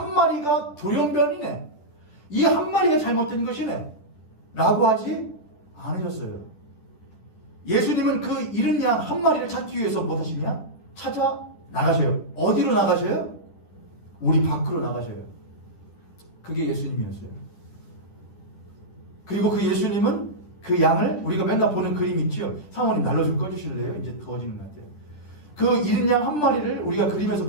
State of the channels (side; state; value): right; late; 10 ms